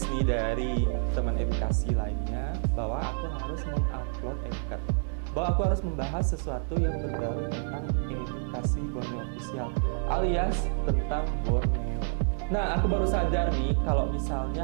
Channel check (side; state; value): left; silent; digital silence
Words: nih dari teman edukasi lainnya bahwa aku harus mengupload MCAT, bahwa aku harus membahas sesuatu yang berbau tentang Edukasi Borneo Official alias tentang Borneo. Nah, aku baru sadar nih kalau